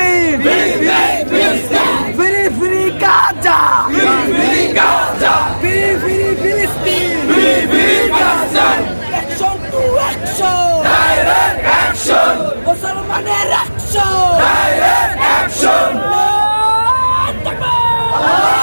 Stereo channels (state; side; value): inverted; both; correlation -1.00